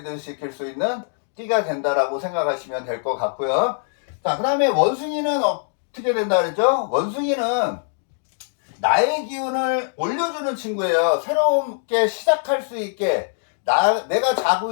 시킬 수 있는 띠가 된다라고 생각하시면 될 것 같고요. 자, 그 다음에 원숭이는 어떻게 된다 그랬죠? 원숭이는 나의 기운을 올려주는 친구예요. 새롭게 시작할 수 있게 내가 자고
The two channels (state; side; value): silent; right; digital silence